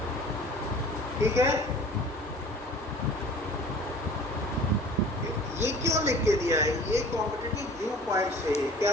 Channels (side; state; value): both; normal; correlation 0.46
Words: ठीक है। ये क्यों लिख के दिया है? ये कॉम्पिटिटिव व्यू पॉइंट से, क्या